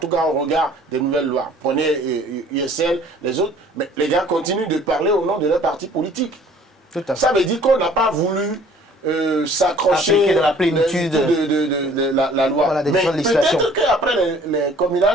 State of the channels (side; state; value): both; normal; correlation 0.54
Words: cas au regard des nouvelles lois. Prenez USL, les autres, mais les gars continuent de parler au nom de leur parti politique. Ça veut dire qu'on n'a pas voulu s'accrocher de la plénitude de la loi. Voilà, mais peut-être qu'après les